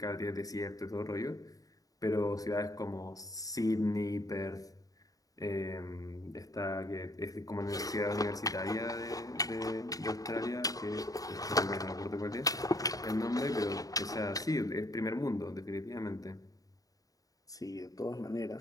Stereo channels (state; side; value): late; right; 0.17 ms